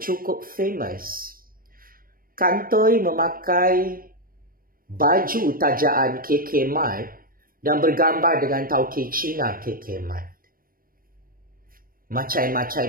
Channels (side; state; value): left; late; 0.41 ms